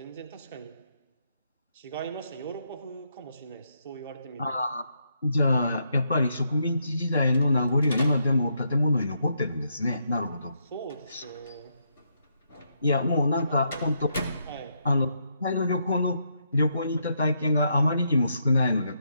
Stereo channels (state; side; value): inverted; both; correlation -0.77